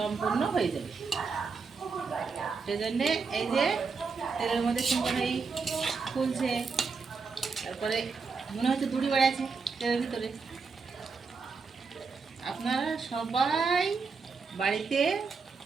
হয়ে যাবে। সেজন্যে এই যে তেলের মধ্যে সুন্দর এই ফুলছে, তারপরে মনে হচ্ছে দড়ি বাড়াচ্ছে তেলের ভিতরে। আপনারা সবাই বাড়িতে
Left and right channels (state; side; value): quieter; left; 4.9 dB